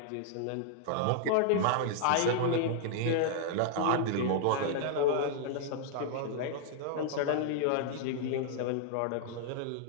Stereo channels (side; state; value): both; different; correlation -0.01